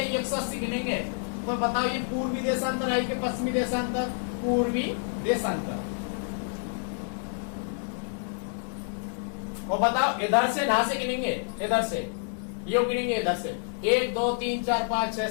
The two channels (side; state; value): right; silent; 59 dB below the other